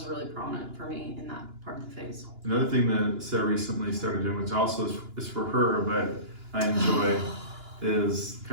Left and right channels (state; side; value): late; left; 2.9 ms